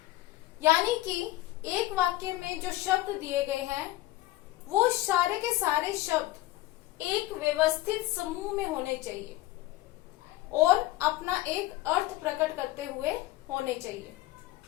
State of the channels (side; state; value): right; quieter; 16.9 dB